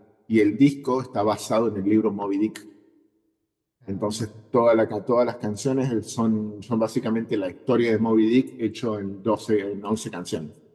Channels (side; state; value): both; identical; correlation 1.00